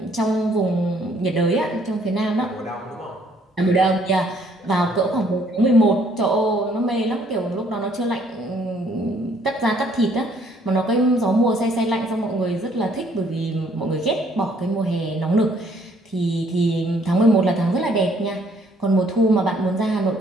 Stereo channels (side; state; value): both; normal; correlation 0.64